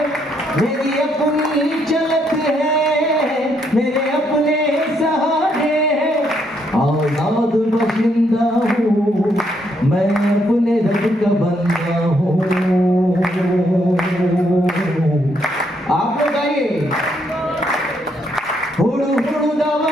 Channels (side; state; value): both; normal; correlation 0.74